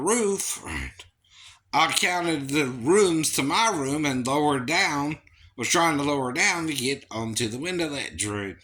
right, I counted the rooms to my room and lowered down, was trying to lower down to get onto the window ledge, right?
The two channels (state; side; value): identical; both; correlation 1.00